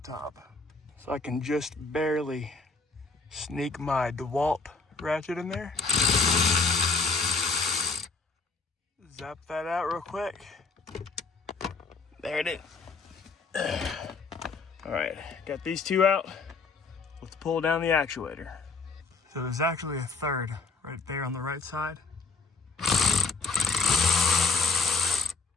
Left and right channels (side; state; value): right; quieter; 4.3 dB